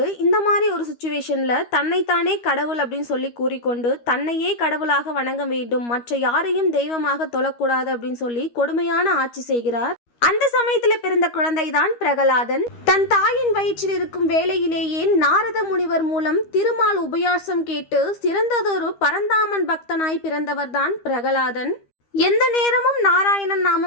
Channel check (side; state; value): right; late; 13 ms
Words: இந்த மாதிரி ஒரு சுச்சுவேஷன்ல தன்னைத்தானே கடவுள் அப்படின்னு சொல்லி கூறிக்கொண்டு தன்னையே கடவுளாக வணங்க வேண்டும், மற்ற யாரையும் தெய்வமாக தொழக்கூடாது அப்படின்னு சொல்லி கொடுமையான ஆட்சி செய்கிறார். அந்த சமயத்துல பிறந்த குழந்தை தான் பிரகலாதன். தன் தாயின் வயிற்றில் இருக்கும் வேளையிலேயே நாரத முனிவர் மூலம் திருமால் உபயாசம் கேட்டு சிறந்ததொரு பரந்தாமன் பக்தனாய் பிறந்தவர் தான் பிரகலாதன். எந்த நேரமும் நாராயணன்